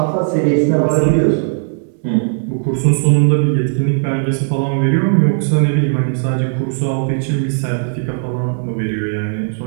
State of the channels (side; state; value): left; silent; digital silence